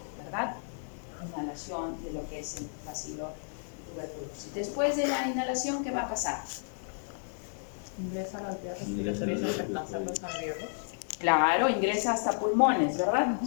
¿verdad? Inhalación de lo que es el bacilo tuberculosis. Después de la inhalación, ¿qué va a pasar? Ingresa a las vías respiratorias y alcanza los alveolos. Claro, ingresa hasta pulmones, ¿verdad?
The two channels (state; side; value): silent; right; digital silence